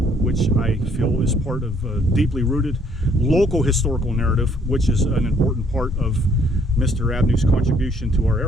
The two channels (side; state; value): both; normal; correlation 0.64